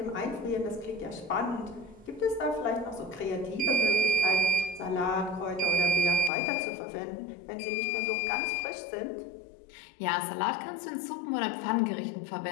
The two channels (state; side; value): drops out; right; at 6.3 s